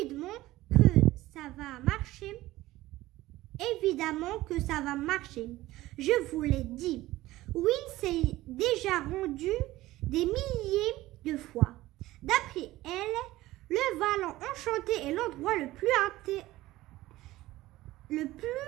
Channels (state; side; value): quieter; left; 17.1 dB